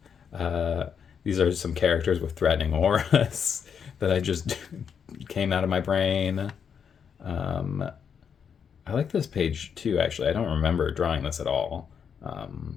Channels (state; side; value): quieter; right; 7.1 dB